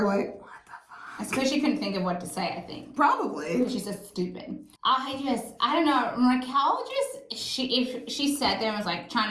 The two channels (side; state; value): both; identical; correlation 1.00